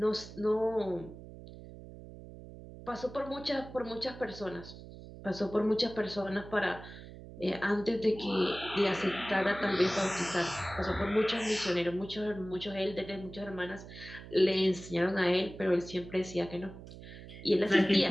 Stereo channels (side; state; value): right; noise; hum, 15 dB below the sound